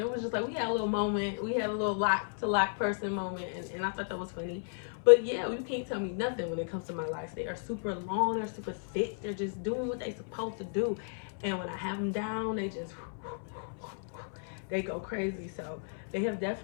was just like, we had a little moment, we had a little lock to lock person moment, and I thought that was funny. But yeah, you can't tell me nothing when it comes to my locks. They are super long, they're super thick, they're just doing what they're supposed to do. And when I have them down, they go crazy. So they have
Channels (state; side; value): silent; right; 55 dB below the other